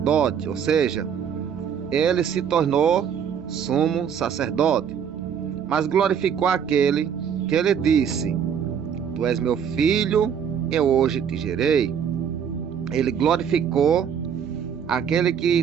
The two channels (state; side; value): quieter; left; 7.8 dB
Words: ou seja, ele se tornou sumo sacerdote, mas glorificou aquele que ele disse: Tu és meu filho, eu hoje te gerei. Ele glorificou aquele que